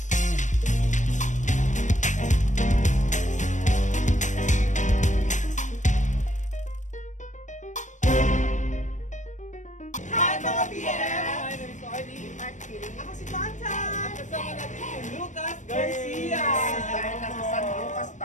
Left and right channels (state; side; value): late; right; 0.35 ms